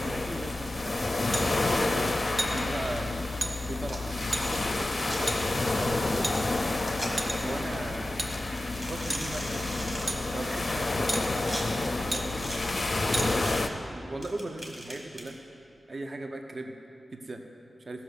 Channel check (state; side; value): normal; both; correlation 0.94